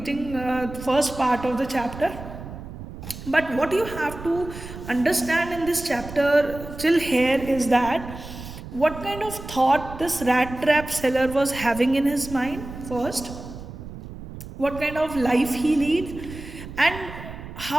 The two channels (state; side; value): noise; right; rumble, 12 dB below the sound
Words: the first part of the chapter. But what you have to understand in this chapter till here is that What kind of thought this rat trap seller was having in his mind first, what kind of life he lead, and